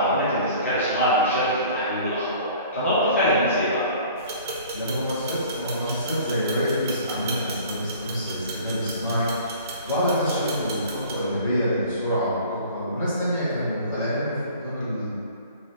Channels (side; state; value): both; inverted; correlation -0.47